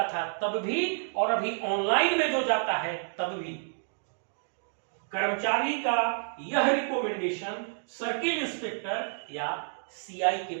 था तब भी और अभी ऑनलाइन में जो जाता है तब भी, कर्मचारी का यह रिकमेंडेशन सर्किल इंस्पेक्टर या सीआई के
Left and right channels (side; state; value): left; silent; digital silence